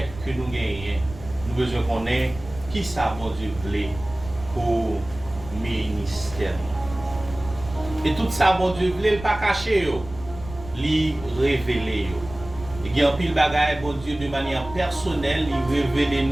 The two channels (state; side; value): noise; right; rumble, 14 dB below the sound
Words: que nous gagnons. Nous besoin qu'on ait qui ça bon Dieu voulait pour ministère. Et tout ça bon Dieu voulait le pas cacher yo, li révéler yo. Et il y a un pile bagaille bon Dieu de manière personnelle, il révèle